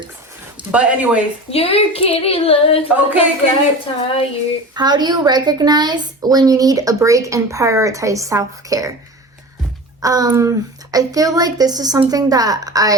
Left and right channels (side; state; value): both; normal; correlation 0.33